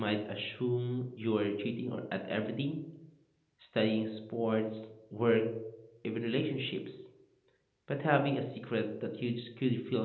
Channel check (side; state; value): both; identical; correlation 1.00